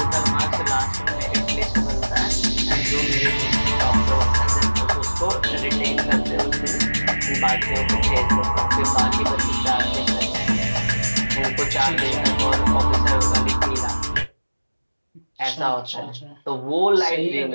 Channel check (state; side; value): inverted; both; correlation -1.00